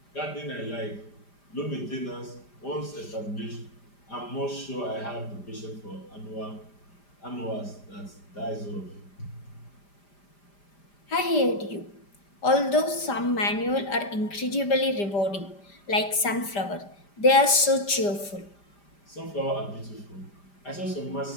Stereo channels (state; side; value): late; right; 5.0 ms